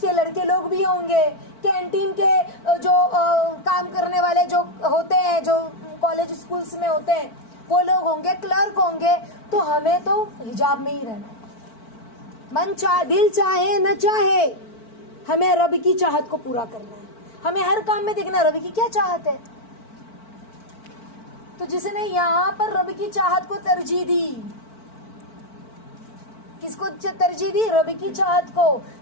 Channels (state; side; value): late; right; 4.5 ms